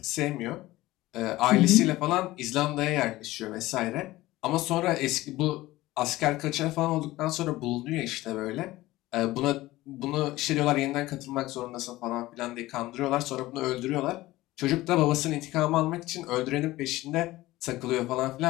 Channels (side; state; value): right; quieter; 17.7 dB